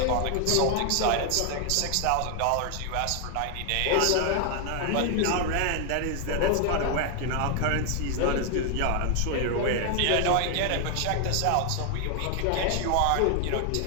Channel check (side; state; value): both; different; correlation 0.00